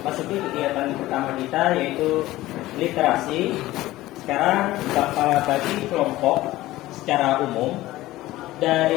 masuki kegiatan pertama kita, yaitu literasi. Sekarang Bapak bagi kelompok secara umum.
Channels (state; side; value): quieter; right; 16.8 dB